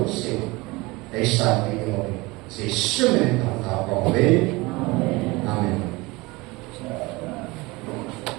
siêu để sản cái người sẽ sớm lên tàu tàu còn về amen.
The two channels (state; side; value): quieter; left; 23.0 dB